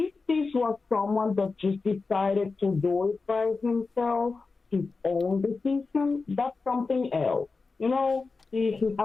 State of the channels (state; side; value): quieter; right; 4.2 dB